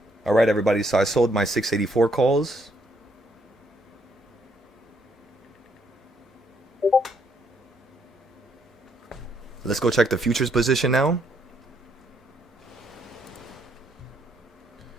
All right, everybody. So I sold my 684 calls. Let's go check the futures position now.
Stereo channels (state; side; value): normal; both; correlation 0.72